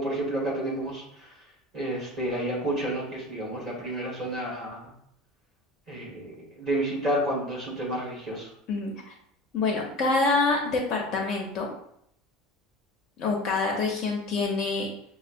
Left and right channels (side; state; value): both; normal; correlation 0.36